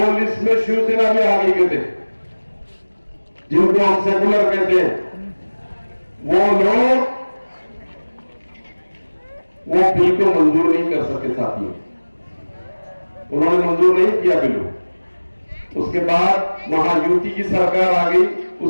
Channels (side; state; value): both; inverted; correlation -1.00